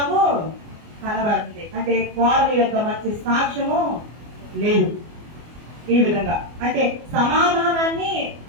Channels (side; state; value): left; late; 24 ms